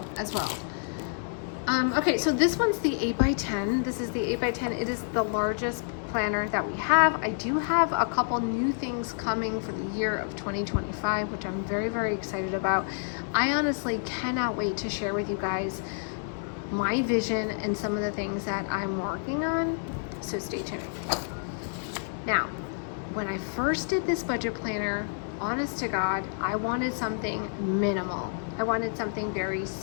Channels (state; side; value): silent; right; 59 dB below the other